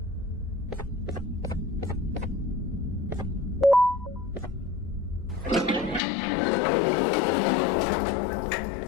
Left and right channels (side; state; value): right; drops out; at 6.0 s